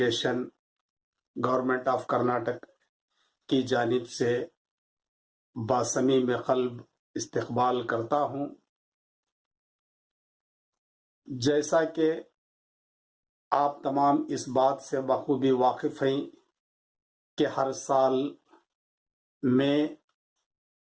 government of Karnataka کی جانب سے باصمیم قلب استقبال کرتا ہوں۔ جیسا کہ آپ تمام اس بات سے بخوبی واقف ہیں کہ ہر سال مئی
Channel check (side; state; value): both; identical; correlation 1.00